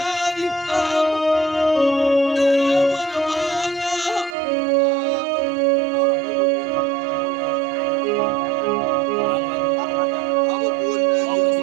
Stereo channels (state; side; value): drops out; left; at 4.4 s